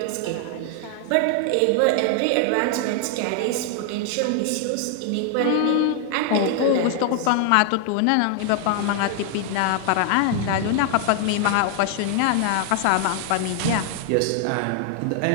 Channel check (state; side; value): different; both; correlation 0.00